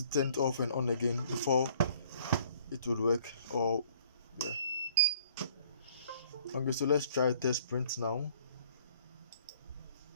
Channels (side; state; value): both; inverted; correlation -0.58